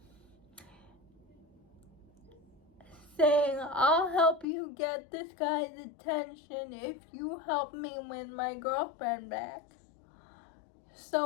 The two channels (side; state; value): right; drops out; at 4.5 s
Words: saying, I'll help you get this guy's attention if you help me win my girlfriend back.